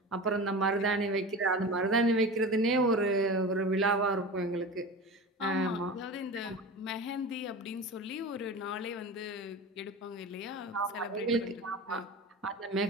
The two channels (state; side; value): normal; both; correlation 0.31